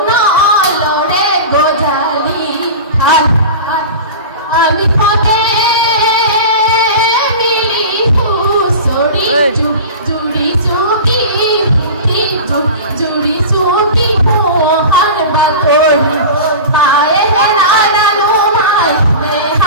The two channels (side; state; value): both; inverted; correlation -0.31